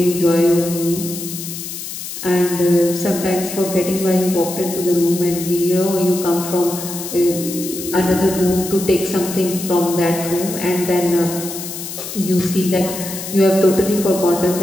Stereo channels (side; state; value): left; noise; hiss, 8 dB below the sound